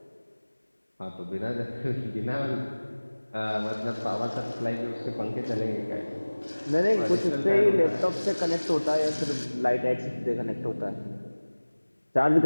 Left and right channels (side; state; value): both; inverted; correlation -1.00